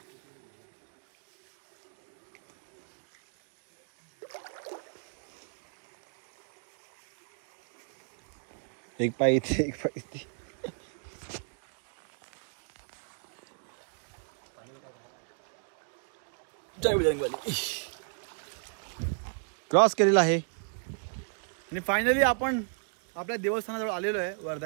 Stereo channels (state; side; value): silent; left; 55 dB below the other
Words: एक पाय इथे एक पाय इथे. जय बजरंगबली. क्रॉस केलेला आहे आणि फायनली आपण आपल्या देवस्थानाजवळ आलेलो आहे,